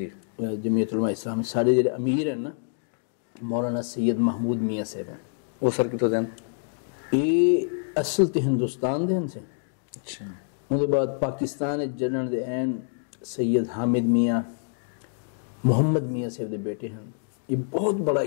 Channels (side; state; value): right; silent; digital silence